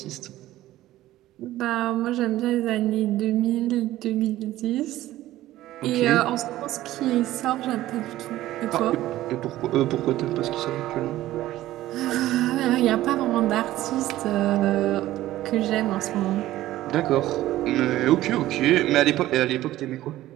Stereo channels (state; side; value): quieter; left; 15.1 dB